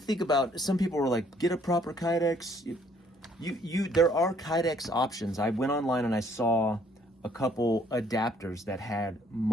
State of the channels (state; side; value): normal; both; correlation 0.63